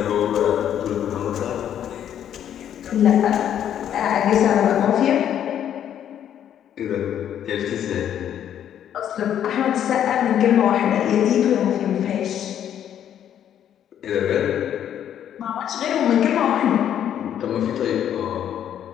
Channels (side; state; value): right; quieter; 10.0 dB